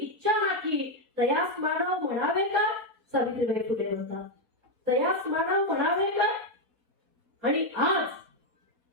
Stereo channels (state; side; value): late; left; 4.2 ms